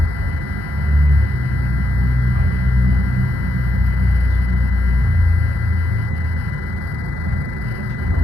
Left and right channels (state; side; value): normal; both; correlation 0.82